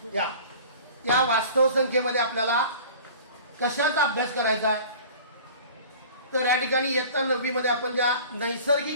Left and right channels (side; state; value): both; inverted; correlation -0.43